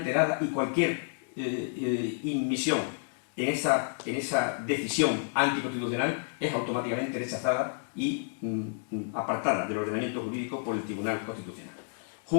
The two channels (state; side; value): silent; right; 58 dB below the other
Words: y cualquier inmisión en esa decisión anticonstitucional es automáticamente rechazada y apartada del ordenamiento jurídico por el Tribunal Constitucional.